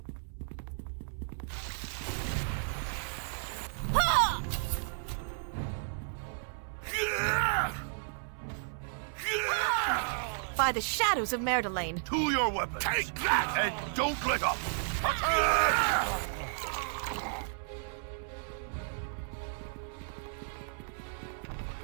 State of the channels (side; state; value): left; silent; 56 dB below the other